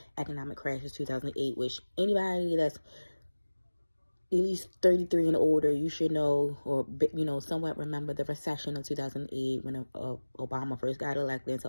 economic crash of 2008, which anybody that's at least 33 and older, you should know, or, somewhat remember the recession of 2008 when Obama first got elected into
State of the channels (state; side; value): inverted; both; correlation -1.00